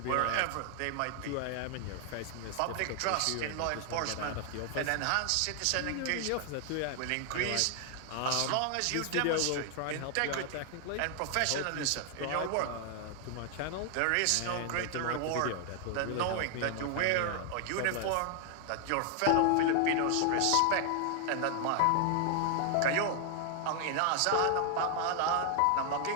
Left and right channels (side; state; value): both; different; correlation 0.00